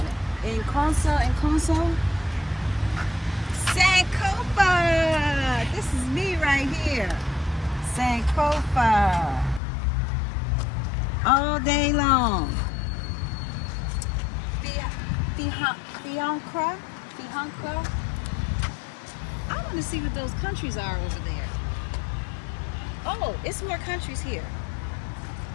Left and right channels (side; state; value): right; drops out; at 9.6 s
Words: Inconso. Sankofa! This is me right here. Sankofa. All day long. Fiancra. I want to see what those countries are over there. Oh, it's more countries here.